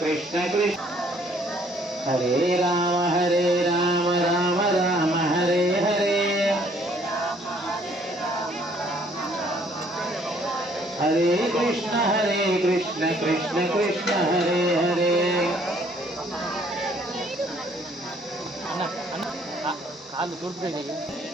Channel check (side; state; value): both; normal; correlation 0.62